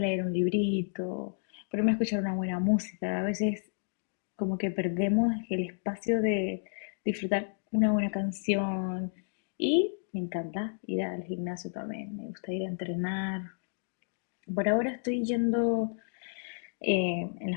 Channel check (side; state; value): right; silent; digital silence